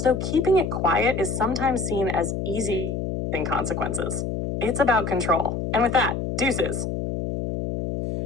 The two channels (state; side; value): noise; left; hum, 3 dB below the sound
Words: keeping it quiet is sometimes seen as easy than consequences. It's about control. And with that, deuces.